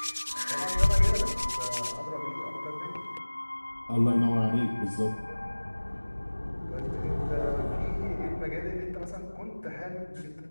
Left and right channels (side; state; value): both; inverted; correlation -1.00